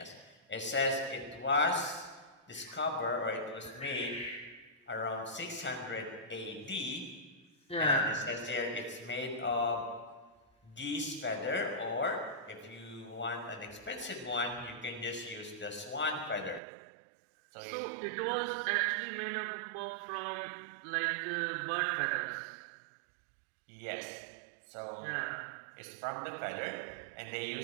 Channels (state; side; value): drops out; left; at 16.6 s